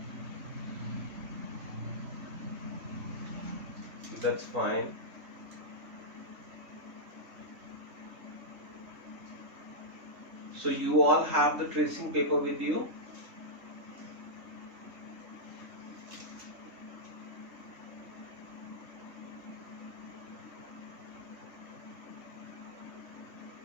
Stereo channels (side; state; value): left; late; 3.5 ms